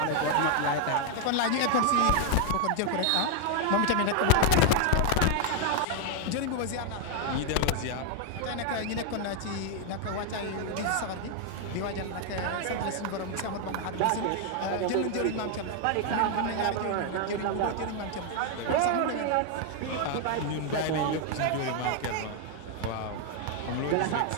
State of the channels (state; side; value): different; both; correlation 0.00